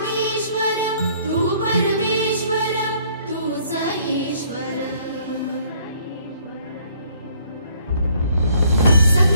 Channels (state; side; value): inverted; both; correlation -0.62